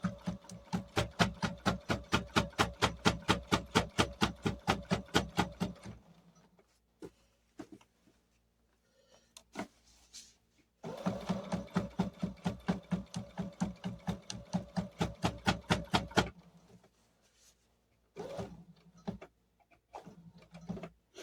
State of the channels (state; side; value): identical; both; correlation 1.00